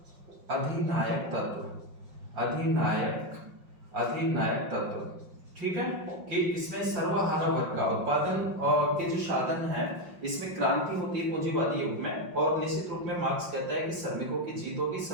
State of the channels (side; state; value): left; late; 5.5 ms